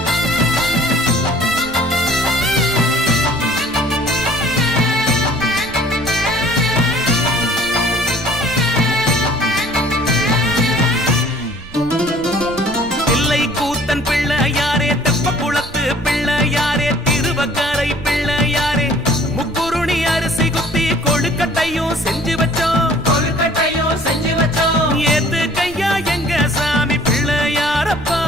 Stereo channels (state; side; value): noise; right; rumble, 17 dB below the sound